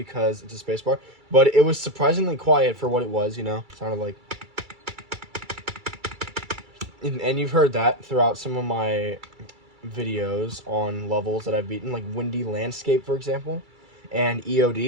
it's a spacebar. But it was surprisingly quiet for what it was, you know? Sounded like... And you've heard that throughout some of my videos on levels that I've beaten, like Windy Landscape, for example, and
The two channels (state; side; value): late; left; 2.3 ms